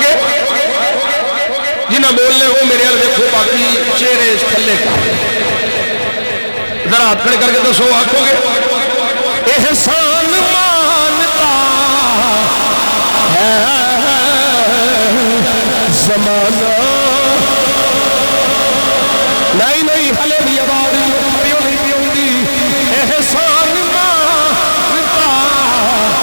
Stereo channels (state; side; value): inverted; both; correlation -1.00